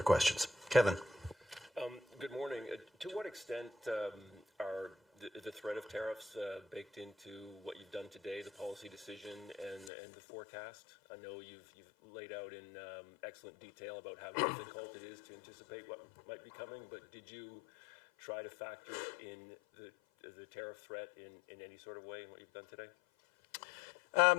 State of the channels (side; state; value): right; drops out; at 9.9 s